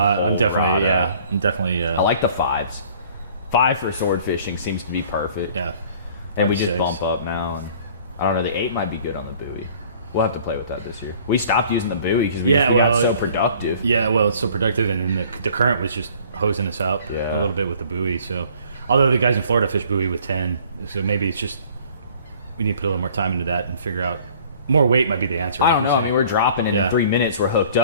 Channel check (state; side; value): inverted; both; correlation -0.53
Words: definitely. I like the 5s. 5 for sword fishing seems to be perfect. Yeah, and we just bump up now. And I don't know. The 8 might be good on the buoy. We'll have to play with that this year. We stopped using the buoy because we got so productive. Yeah, well, it's so productive, and then the current was just hosing us out a little bit with the buoy. So, although the guys in Florida fish buoy with 10, so maybe it's just we need to put a little more time into that and figure out more weight might be the answer. I don't know. I mean, we're dropping it in 3 minutes. We're hooked